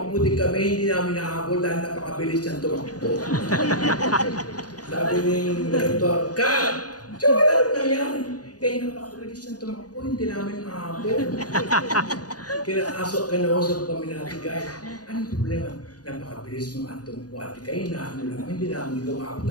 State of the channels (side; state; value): right; late; 0.68 ms